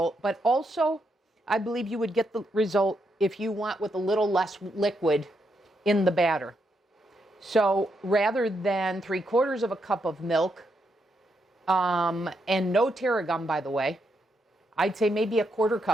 But also, I believe you would get the result if you want with a little less liquid in the batter. So rather than 3/4 of a cup of milk, and no tarragon, by the way, I'd say maybe a 1/4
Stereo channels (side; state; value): both; normal; correlation 0.80